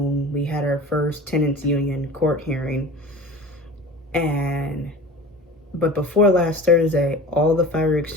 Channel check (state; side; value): normal; both; correlation 0.37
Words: we had our first tenants union court hearing. But before last Thursday, all the fire